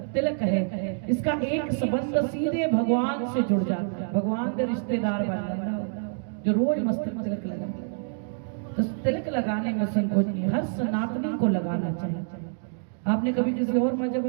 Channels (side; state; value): left; silent; digital silence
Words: तिलक है। इसका एक संबंध सीधे भगवान से जुड़ जाता है, भगवान के रिश्तेदार बन जाता है जो रोज मस्तक तिलक लगाता है। तो तिलक लगाने में संकोच नहीं, हर सनातनी को लगाना चाहिए। आपने कभी किसी और मजहब